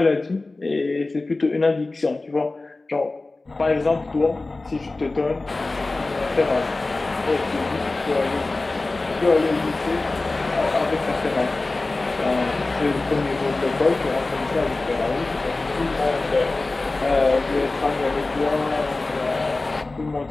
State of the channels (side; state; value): right; quieter; 3.2 dB